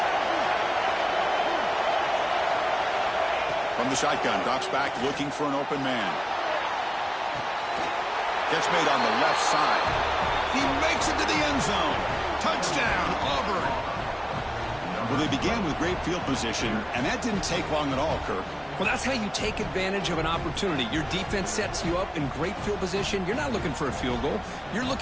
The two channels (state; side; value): identical; both; correlation 1.00